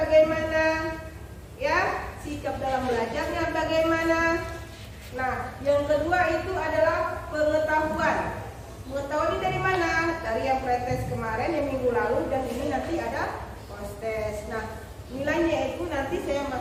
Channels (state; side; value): identical; both; correlation 1.00